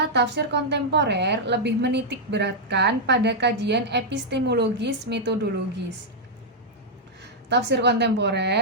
tafsir kontemporer lebih menitik beratkan pada kajian epistemologis metodologis. Tafsir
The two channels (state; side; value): normal; both; correlation -0.05